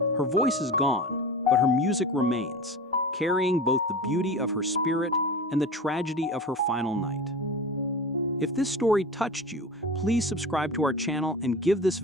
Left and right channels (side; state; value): both; normal; correlation 0.32